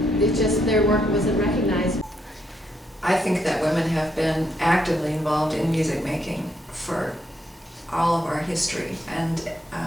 their work wasn't recognized. I think that women have been actively involved in music making for all of our history, and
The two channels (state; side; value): normal; both; correlation 0.77